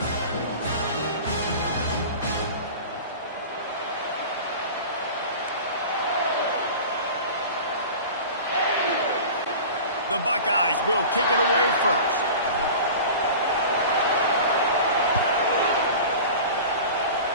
The Buckeyes will kick it away first.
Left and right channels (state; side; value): inverted; both; correlation -0.36